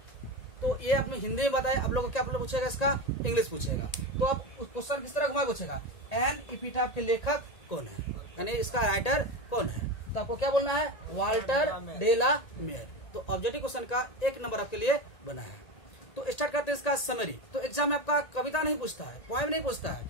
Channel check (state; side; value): late; right; 1.8 ms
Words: तो ये आपने हिंदी में बताया, आप लोग को क्या पूछेगा, इसका इंग्लिश पूछेगा। तो अब क्वेश्चन किस तरह घुमा पूछेगा, एन एपिटाफ के लेखक कौन है, यानी इसका राइटर कौन है। तो आपको क्या बोलना है, वाल्टर डेला मेयर। तो ऑब्जेक्टिव क्वेश्चन का 1 नंबर आपके लिए बना है। तो स्टार्ट करते हैं इसका समरी। तो एग्जाम में आपका कविता नहीं पूछता है, पोएम नहीं पूछता है,